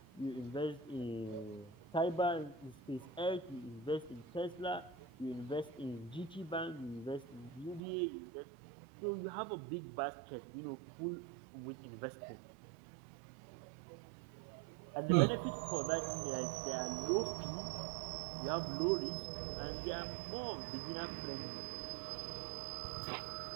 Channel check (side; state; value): left; drops out; at 7.8 s